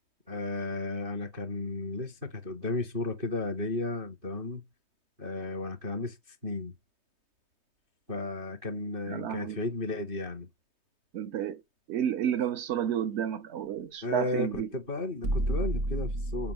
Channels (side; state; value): left; late; 3.2 ms